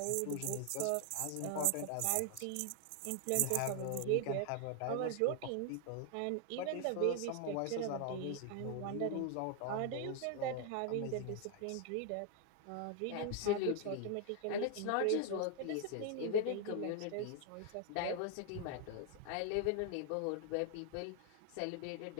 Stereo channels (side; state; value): both; different; correlation 0.00